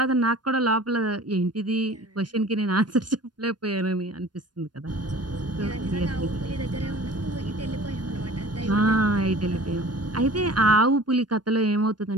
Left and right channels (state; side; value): late; left; 0.70 ms